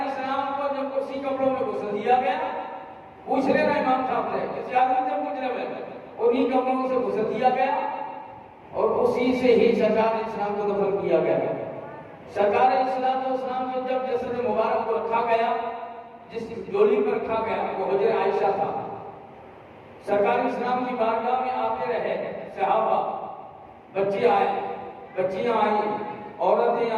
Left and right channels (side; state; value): both; identical; correlation 1.00